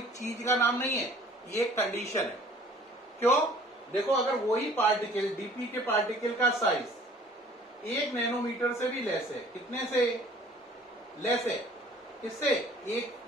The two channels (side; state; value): both; normal; correlation 0.52